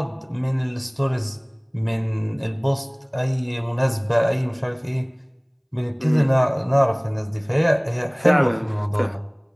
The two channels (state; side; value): identical; both; correlation 1.00